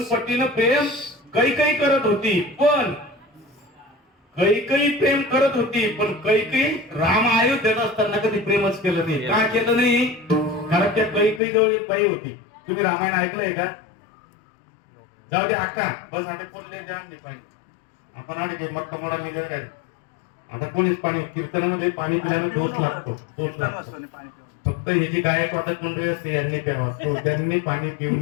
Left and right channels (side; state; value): right; drops out; at 11.4 s